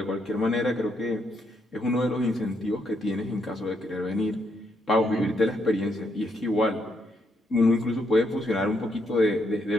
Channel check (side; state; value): both; normal; correlation 0.76